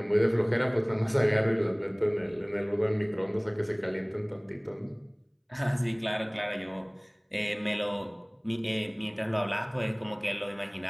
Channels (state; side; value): identical; both; correlation 1.00